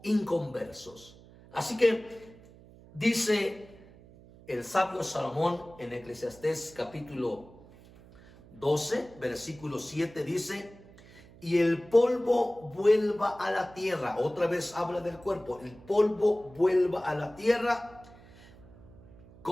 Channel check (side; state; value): right; noise; hum, 22 dB below the sound